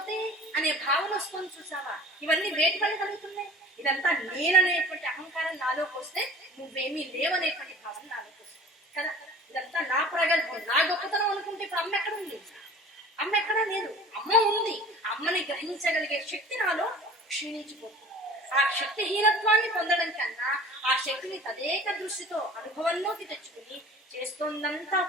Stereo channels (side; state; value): both; normal; correlation 0.43